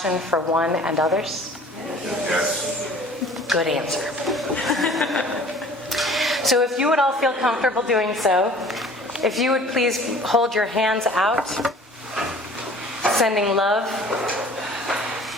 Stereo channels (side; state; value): both; normal; correlation 0.48